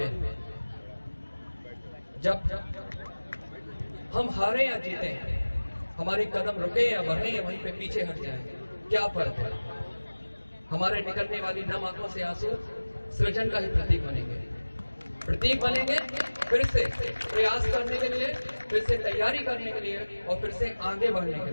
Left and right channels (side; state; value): both; inverted; correlation -1.00